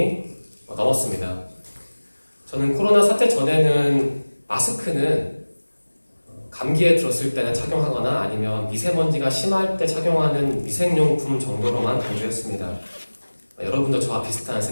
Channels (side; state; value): both; inverted; correlation -1.00